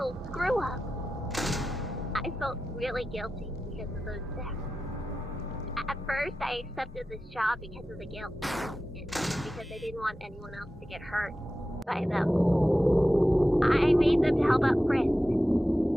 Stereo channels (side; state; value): both; normal; correlation 0.93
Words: screw-up. I felt really guilty because of those deaths. At first, I accepted this job because of the guilt, and because I didn't want anyone else to get hurt by them. I made them to help out Frisk.